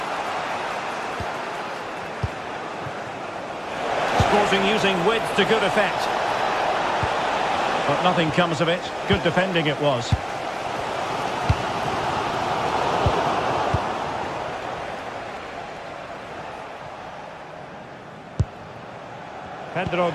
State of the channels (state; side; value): identical; both; correlation 1.00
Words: Sporting using width to good effect. But nothing comes of it. Good defending it was. Pedro